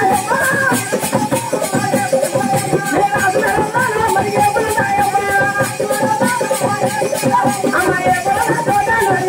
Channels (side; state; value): both; identical; correlation 1.00